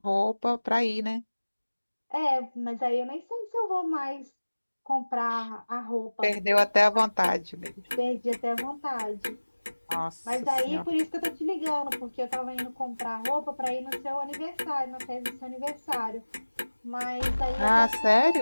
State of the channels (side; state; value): both; inverted; correlation -1.00